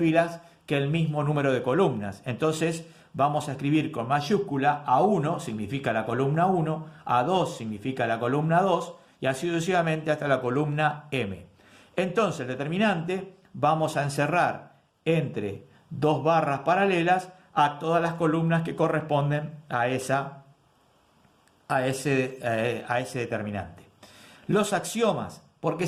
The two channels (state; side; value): identical; both; correlation 1.00